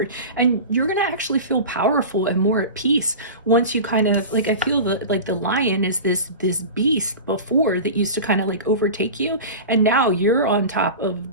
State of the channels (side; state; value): both; inverted; correlation -0.31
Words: And you're going to actually feel powerful and more at peace once you kind of, like, I feel that like the lion is this beast before that used to kind of like overtake you. And now you're on top of